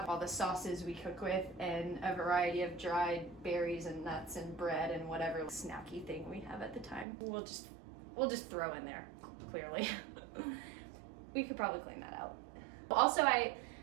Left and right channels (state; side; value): drops out; left; at 7.1 s